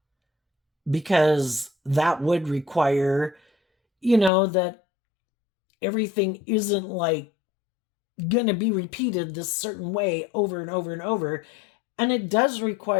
because that would require that everything isn't like gonna be repeated this certain way over and over and over. And it does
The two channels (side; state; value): right; drops out; at 4.3 s